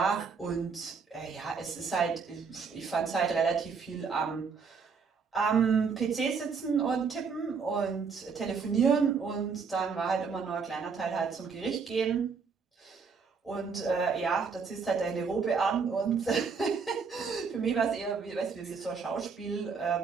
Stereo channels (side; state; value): left; quieter; 5.5 dB